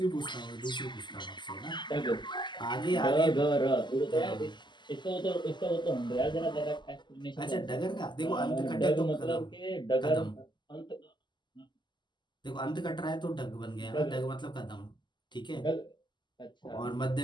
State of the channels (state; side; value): late; right; 0.22 ms